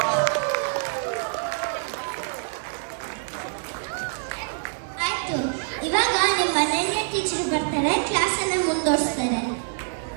ಆಯ್ತು, ಇವಾಗ ನಿಮ್ಮ ಮನೆಗೆ ಟೀಚರ್ ಬರ್ತಾರೆ, ಕ್ಲಾಸನ್ನು ಮುಂದುವರಿಸ್ತಾರೆ.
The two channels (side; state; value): left; silent; 57 dB below the other